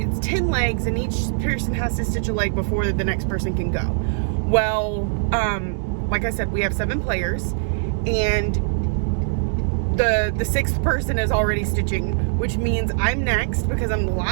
10 legs and each person has to stitch a leg before the next person can go. Well, like I said, we have 7 players, and the 6th person is already stitching, which means I'm next because I'm the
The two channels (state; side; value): silent; left; digital silence